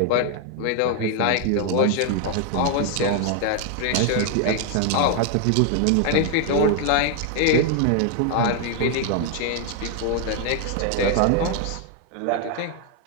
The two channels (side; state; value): both; different; correlation 0.00